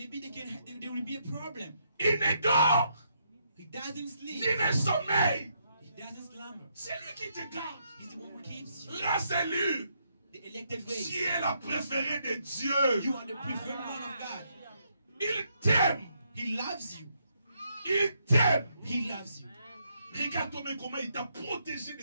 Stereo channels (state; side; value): inverted; both; correlation -0.76